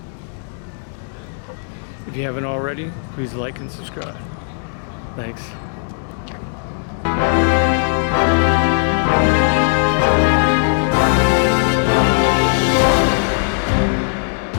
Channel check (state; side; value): silent; right; digital silence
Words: If you haven't already, please like and subscribe. Thanks.